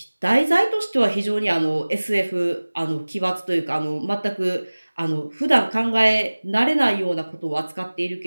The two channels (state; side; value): inverted; both; correlation -1.00